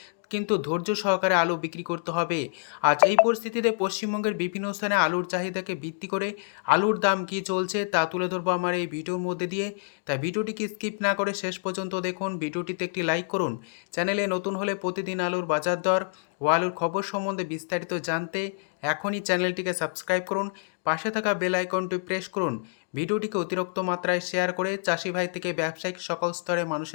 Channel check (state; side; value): silent; right; digital silence